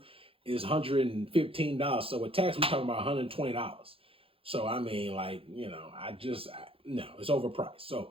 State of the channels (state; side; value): late; left; 0.27 ms